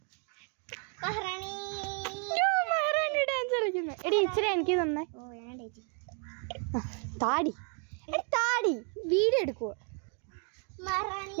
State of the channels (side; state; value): left; quieter; 39.9 dB